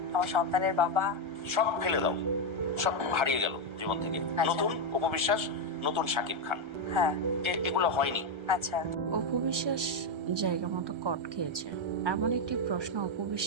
আমার সন্তানের বাবা। সব ফেলে দাও, সব হারিয়ে গেল জীবন থেকে। আচ্ছা। নতুন অপবিশ্বাস, নতুন শাকিব খান, হ্যাঁ। এগুলো হয়নি। আচ্ছা। অপু বিশ্বাস জায়গা মতো কট খেয়েছে, এমন একটি প্রশ্ন অপু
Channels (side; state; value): left; late; 1.3 ms